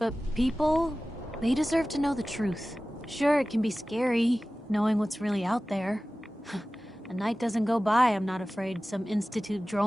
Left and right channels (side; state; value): both; normal; correlation 0.96